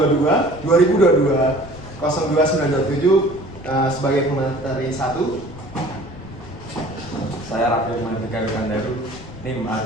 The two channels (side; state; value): left; noise; rumble, 17 dB below the sound